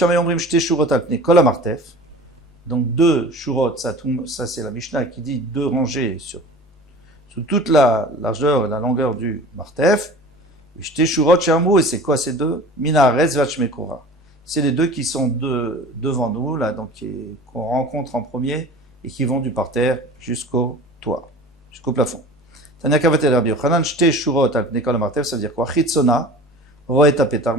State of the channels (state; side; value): normal; both; correlation 0.40